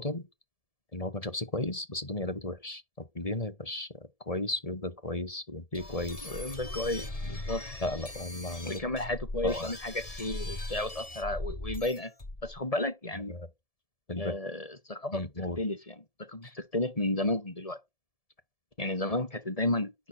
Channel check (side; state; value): right; late; 1.7 ms